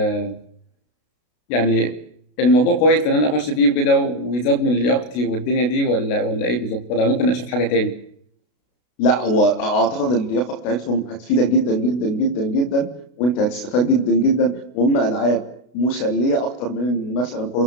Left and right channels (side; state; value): right; late; 32 ms